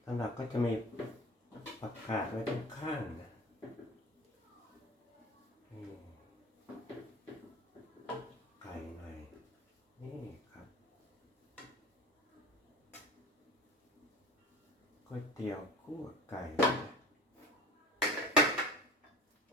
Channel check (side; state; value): both; normal; correlation 0.38